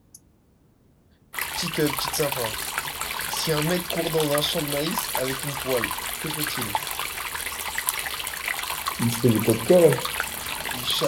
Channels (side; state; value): both; identical; correlation 1.00